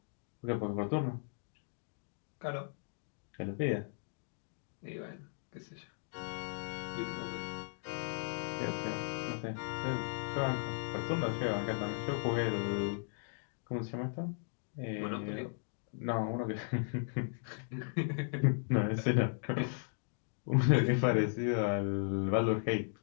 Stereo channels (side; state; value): right; silent; digital silence